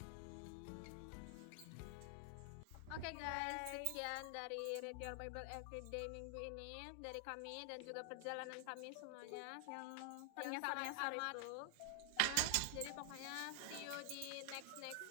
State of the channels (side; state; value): both; different; correlation 0.00